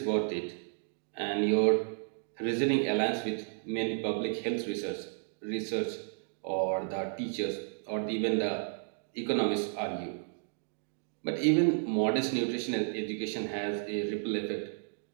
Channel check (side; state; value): left; silent; digital silence